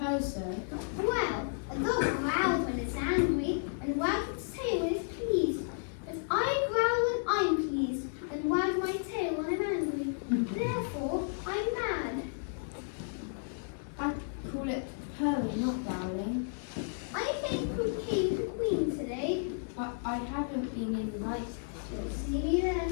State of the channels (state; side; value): silent; right; digital silence